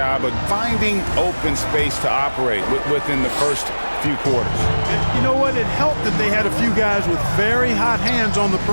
of finding open space to operate within the first few quarters. You know what? It helped that they had a few guys with very hot hands on the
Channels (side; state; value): both; inverted; correlation -1.00